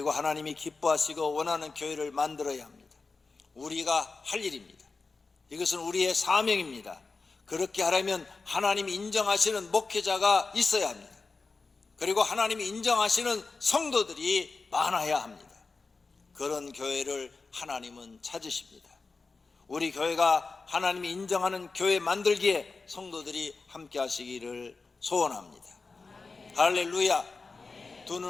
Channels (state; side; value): quieter; right; 4.1 dB